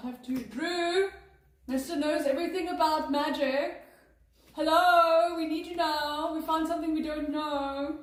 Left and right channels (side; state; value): both; identical; correlation 1.00